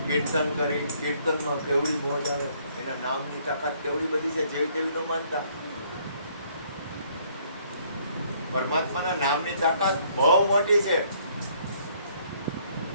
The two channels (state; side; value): inverted; both; correlation -0.64